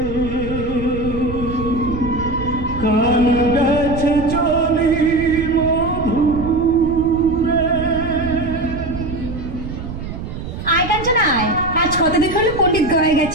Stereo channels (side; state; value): right; noise; rumble, 8 dB below the sound